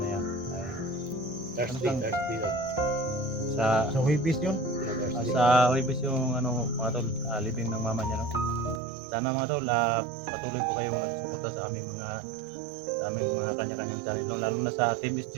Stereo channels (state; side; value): drops out; left; at 8.8 s